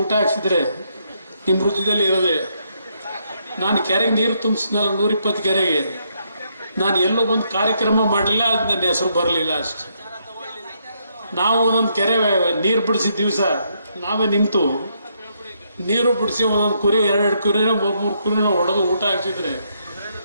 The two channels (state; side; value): inverted; both; correlation -0.75